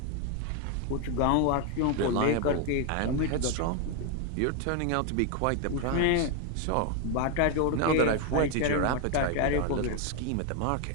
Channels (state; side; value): different; both; correlation 0.01